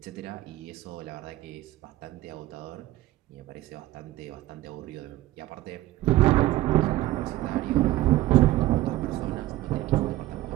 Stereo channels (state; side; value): quieter; left; 15.9 dB